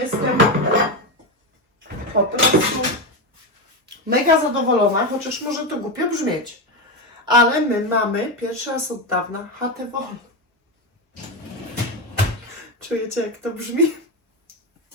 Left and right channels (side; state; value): both; normal; correlation 0.13